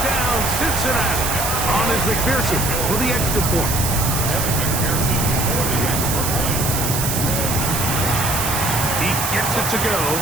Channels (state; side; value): noise; right; hiss, 2 dB below the sound